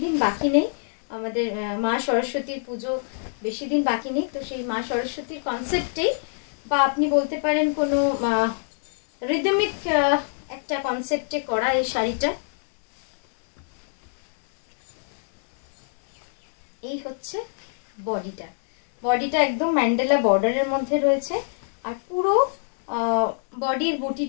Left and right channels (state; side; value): silent; right; 62 dB below the other